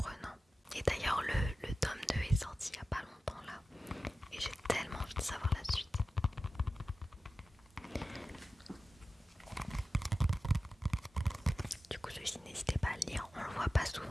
Et d'ailleurs le tome 2 est sorti il y a pas longtemps là. Et j'ai tellement envie de savoir la suite. Du coup celui-ci, n'hésitez pas à le lire. On le voit pas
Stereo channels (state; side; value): normal; both; correlation 0.95